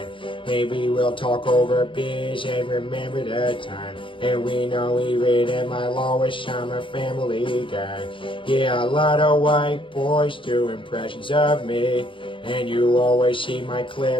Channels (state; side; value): late; right; 0.25 ms